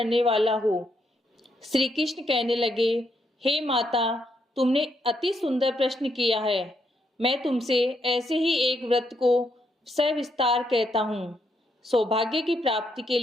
वाला हो। श्री कृष्ण कहने लगे, हे माता, तुमने अति सुंदर प्रश्न किया है। मैं तुमसे ऐसे ही एक व्रत को सविस्तार कहता हूँ। सौभाग्य की प्राप्ति के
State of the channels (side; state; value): both; normal; correlation 0.77